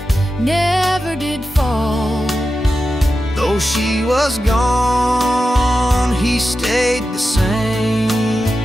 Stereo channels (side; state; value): both; normal; correlation 0.91